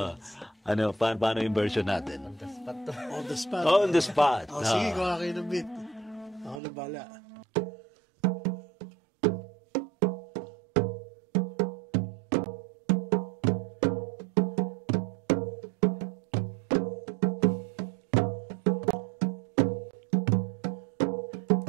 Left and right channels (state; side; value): drops out; left; at 6.6 s